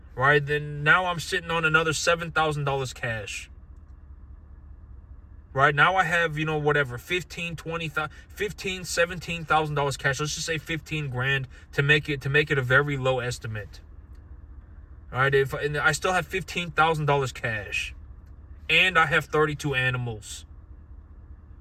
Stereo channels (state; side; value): identical; both; correlation 1.00